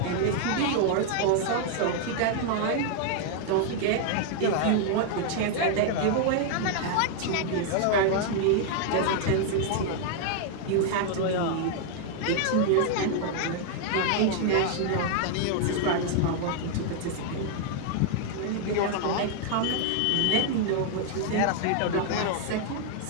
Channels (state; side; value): different; both; correlation 0.00